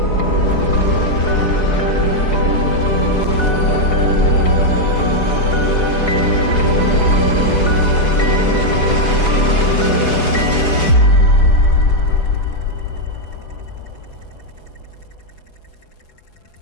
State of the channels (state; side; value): late; right; 4.8 ms